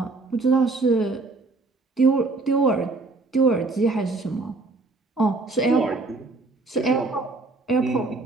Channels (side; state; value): left; quieter; 3.5 dB